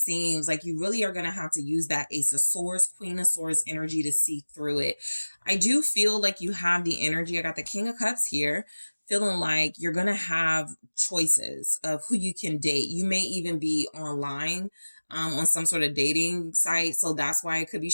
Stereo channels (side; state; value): both; inverted; correlation -1.00